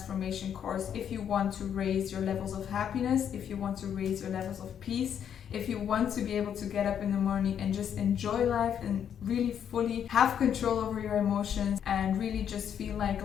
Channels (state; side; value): quieter; right; 8.8 dB